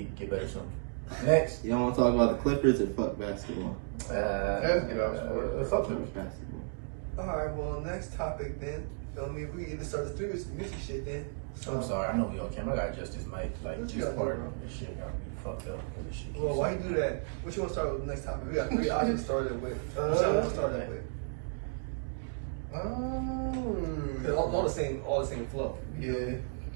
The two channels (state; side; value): silent; left; digital silence